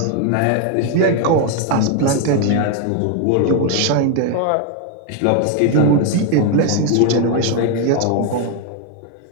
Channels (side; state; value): both; different; correlation 0.01